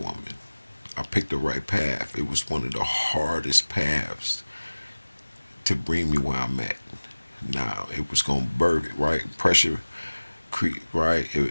I picked the right path. It was one of the hardest paths to bring me where I'm at. Now it was gonna birth it, right? Pressure, right?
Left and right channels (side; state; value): both; inverted; correlation -1.00